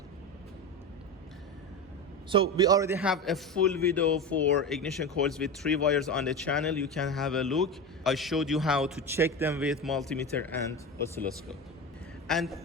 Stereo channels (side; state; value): both; normal; correlation 0.23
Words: So we already have a full video for ignition coils with 3 wires on the channel. You can have a look. I showed you how to check them with multimeter and oscilloscope. And